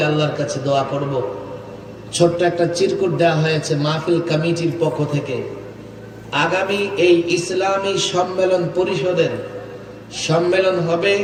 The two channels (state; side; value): identical; both; correlation 1.00